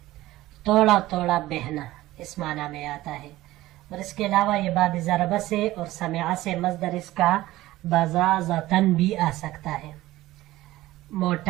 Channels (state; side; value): quieter; left; 16.7 dB